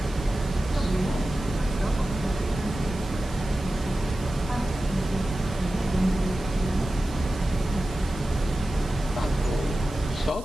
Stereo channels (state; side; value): noise; right; hiss, 19 dB below the sound